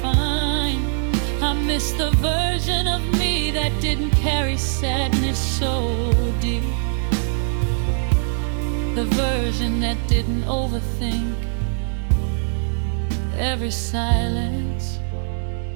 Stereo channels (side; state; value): left; silent; 64 dB below the other